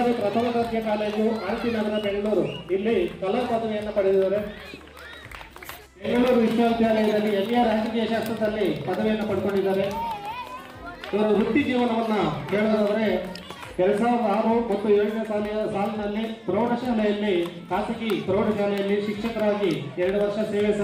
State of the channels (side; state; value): both; identical; correlation 1.00